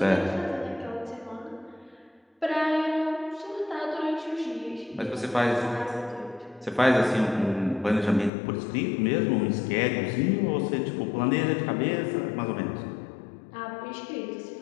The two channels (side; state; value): right; drops out; at 8.3 s